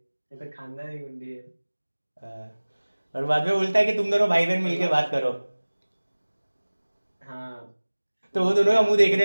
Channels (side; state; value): both; inverted; correlation -1.00